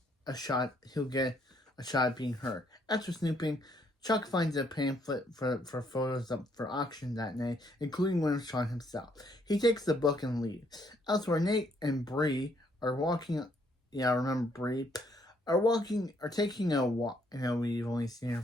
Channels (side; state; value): both; normal; correlation 0.69